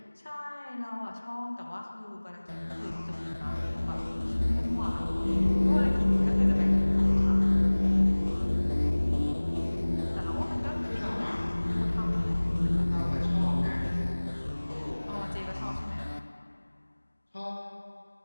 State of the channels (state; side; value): inverted; both; correlation -1.00